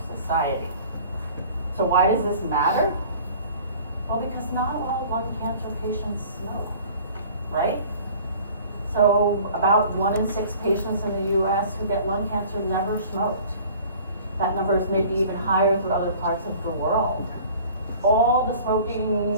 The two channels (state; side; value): inverted; both; correlation -0.47